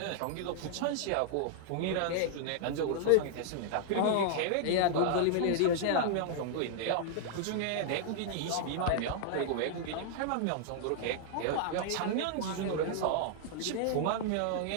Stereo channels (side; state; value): both; different; correlation -0.01